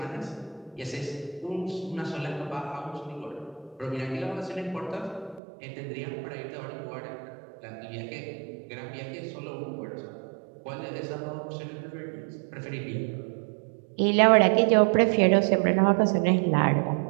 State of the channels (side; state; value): left; drops out; at 5.4 s